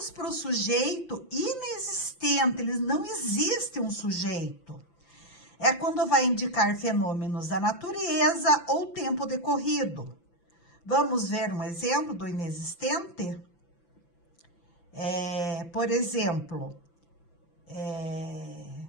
para o sujeito inexistente. Ele não existe um sujeito. É quando vai indicar fenômenos da natureza ou tempo decorrido. Vamos ver um exemplo do inexistente? Por exemplo,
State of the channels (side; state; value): right; late; 5.9 ms